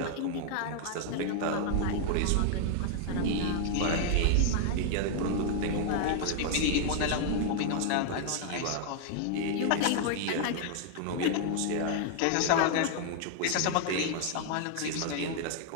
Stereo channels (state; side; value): different; both; correlation 0.00